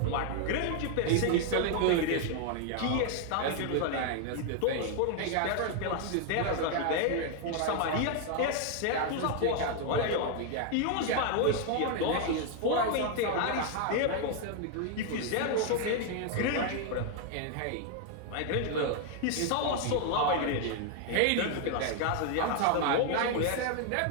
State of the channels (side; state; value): both; different; correlation 0.00